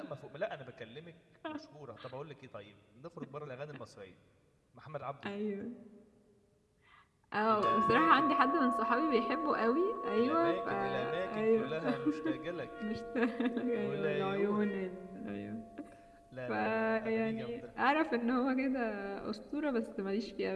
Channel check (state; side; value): identical; both; correlation 1.00